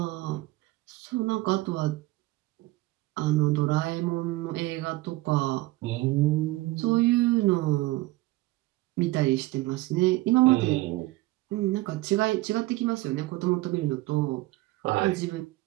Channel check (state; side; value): quieter; left; 19.3 dB